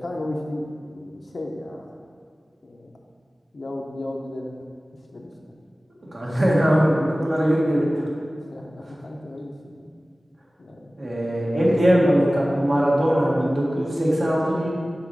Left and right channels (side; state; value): both; normal; correlation 0.97